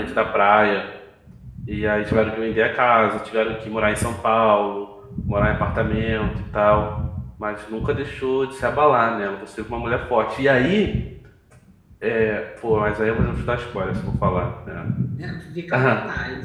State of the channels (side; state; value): both; identical; correlation 1.00